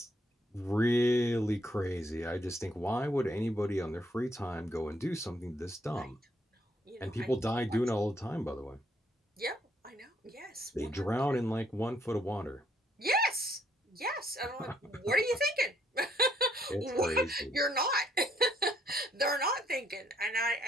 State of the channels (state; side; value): normal; both; correlation 0.69